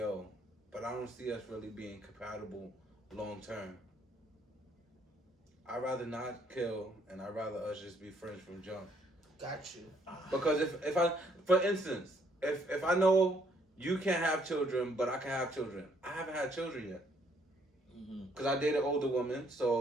but I don't see us really being compatible long term. I'd rather not kill, and I'd rather us just be friends from jump. Got you. Because if I, for instance, if I know you can't have children, but I can have children, I haven't had children yet. Because I dated older women,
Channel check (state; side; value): normal; both; correlation 0.67